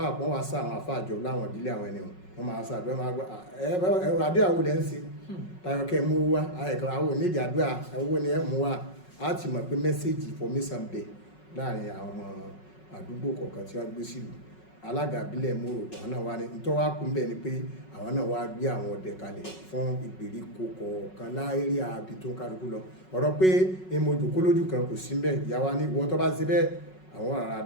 kan wá sá àwọn àfáà jọ láwọn ìbílẹ̀ àwọn ẹni wọn máa sá àdúrà máa gbọ́ ẹ̀rọ àdúrà wo lẹ́ ń ṣe tayọ kẹ́ mú wá àwọn onídìí àdúrà owó ni ẹ̀ mú wá á ti mọ̀ pé mẹ́sẹ̀gì information bẹ̀ láàrin àwọn ọmọ àdúgbò kọ̀ọ̀kan tí wọ́n gbé sílùú. Alága ìbílẹ̀ Mòrò àwọn náà wá ní nítorí wá kún bẹ́ẹ̀ ni pé àwọn náà wá gbé àwọn ọdẹ kalẹ̀ fún ìgbèríko kọ̀ọ̀kan láérí àbí tó ń kálukú lọ. Ọ̀rọ̀ pé èmo jòkó lójú kan kò sí bẹ́ẹ̀, ìyá wa ní ìwọ tó bá ṣe bẹ́ẹ̀ àwọn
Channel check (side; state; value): right; late; 5.4 ms